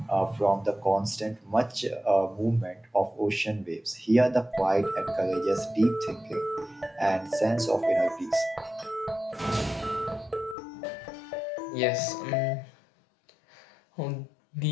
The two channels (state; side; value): drops out; right; at 10.6 s